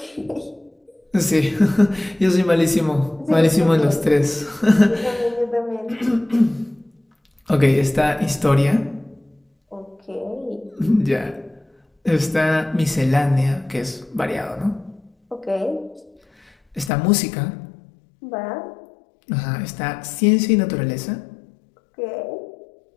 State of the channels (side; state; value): right; drops out; at 16.9 s